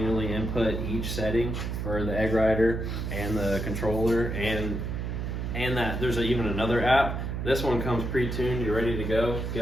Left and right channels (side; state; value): right; noise; hum, 3 dB below the sound